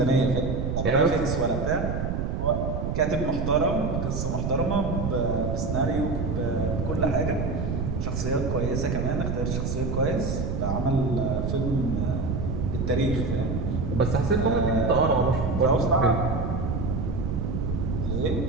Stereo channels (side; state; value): right; noise; rumble, 1 dB below the sound